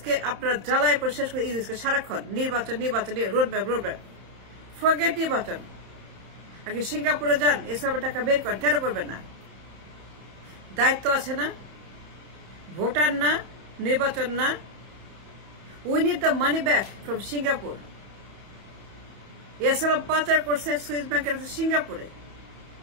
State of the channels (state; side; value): late; left; 31 ms